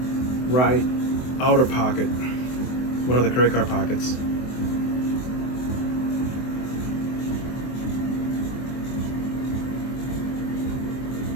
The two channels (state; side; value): late; right; 24 ms